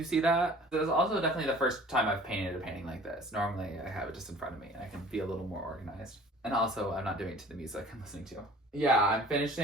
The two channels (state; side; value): normal; both; correlation 0.48